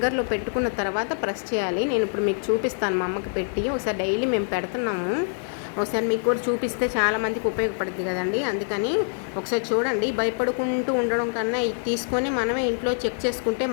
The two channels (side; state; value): right; silent; 58 dB below the other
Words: పెట్టుకున్న తర్వాత ప్రెస్ చేయాలి. నేను ఇప్పుడు మీకు చూపిస్తాను, మా అమ్మకి పెట్టి. ఒకసారి డైలీ మేము పెడుతున్నాము, ఒకసారి మీకు కూడా చూపిస్తే చాలామందికి ఉపయోగపడుతుంది కదండి. అందుకని ఒకసారి చూడండి. భయపడుకుంటూ ఉండడం కన్నా ఇది తీసుకొని మనమే ఇంట్లో చెక్ చేసుకుంటే